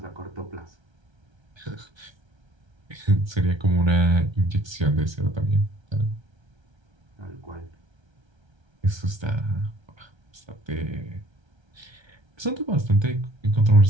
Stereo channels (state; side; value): late; left; 1.3 ms